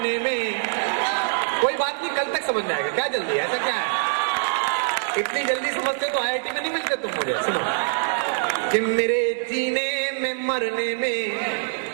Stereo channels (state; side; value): silent; left; digital silence